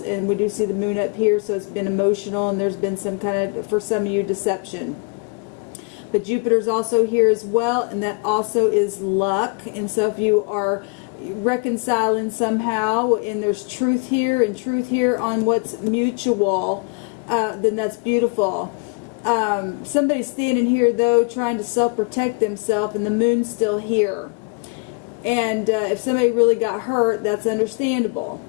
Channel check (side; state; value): right; quieter; 35.5 dB